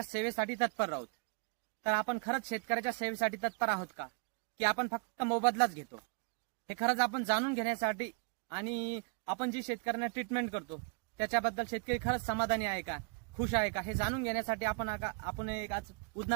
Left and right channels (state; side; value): quieter; left; 38.6 dB